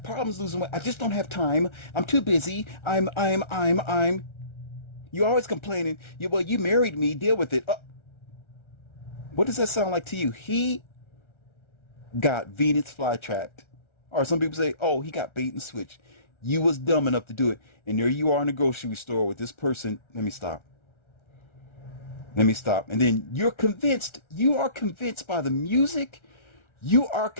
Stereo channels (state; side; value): late; right; 1.3 ms